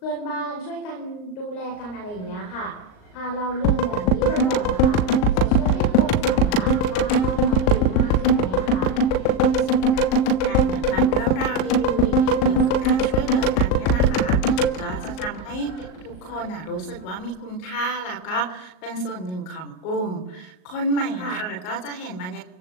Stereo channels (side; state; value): right; late; 38 ms